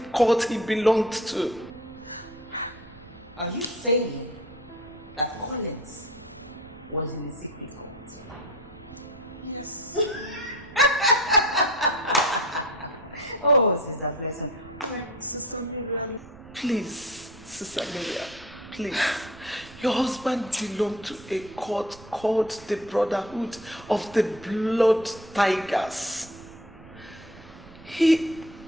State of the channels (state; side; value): noise; right; rumble, 21 dB below the sound